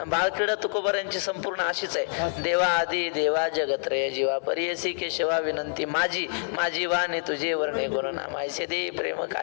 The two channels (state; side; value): silent; right; 59 dB below the other